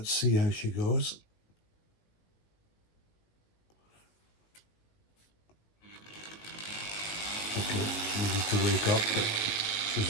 see how she goes. Okay, needed to wake up, but she's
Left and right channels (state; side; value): late; right; 19 ms